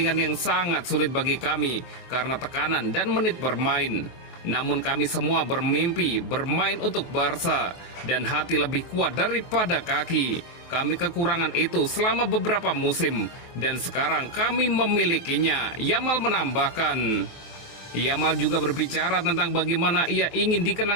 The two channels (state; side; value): late; right; 23 ms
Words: yang sangat sulit bagi kami karena tekanan dan menit bermain. Namun kami semua bermimpi bermain untuk Barca dan hati lebih kuat daripada kaki. Kami kekurangan itu selama beberapa musim dan sekarang kami memilikinya," Yamal menambahkan. Yamal juga berbicara tentang bagaimana ia ingin